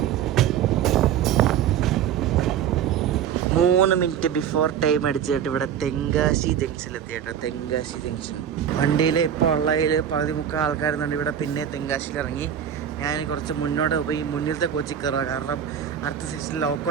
3 minute before time അടിച്ചിട്ട് ഇവിടെ തെങ്കാശി ജംഗ്ഷനിലെത്തി കേട്ടോ. തെങ്കാശി ജംഗ്ഷൻ വണ്ടിയിൽ ഇപ്പോൾ ഉള്ളതിൽ 13 ആൾക്കാരുന്നുണ്ട്. ഇവിടെ പിന്നെ തെങ്കാശിയിൽ ഇറങ്ങി ഞാൻ കുറച്ച് മുന്നോട്ട് പോയി മുന്നിലത്തെ കോച്ചിൽ കയറുക. കാരണം അടുത്ത സെക്ഷനിൽ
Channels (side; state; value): left; quieter; 9.1 dB